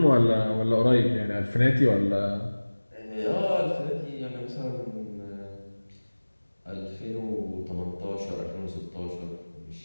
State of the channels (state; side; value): inverted; both; correlation -1.00